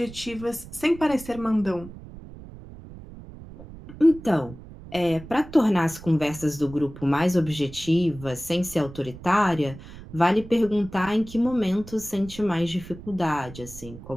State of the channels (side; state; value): right; noise; rumble, 16 dB below the sound